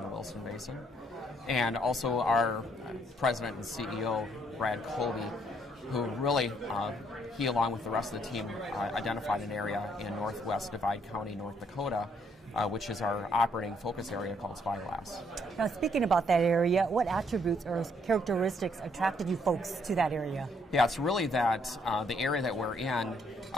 the Williston Basin. And also our president and CEO, Brad Colby, who really, he along with the rest of the team identified an area in northwest Divide County, North Dakota, which is our operating focus area called Spyglass. Now, speaking about that area, what attributes or characteristics attracted you folks to that area? Yeah, it's really that the area that we're in,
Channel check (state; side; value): normal; both; correlation 0.69